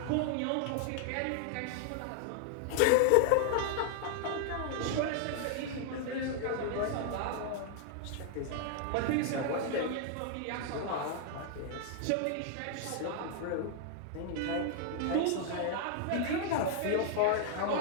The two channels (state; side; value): different; both; correlation 0.00